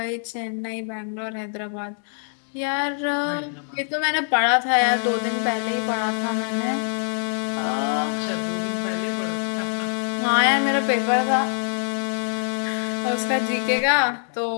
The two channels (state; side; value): silent; right; digital silence